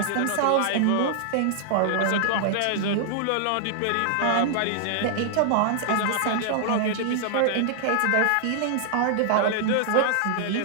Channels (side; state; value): both; different; correlation -0.01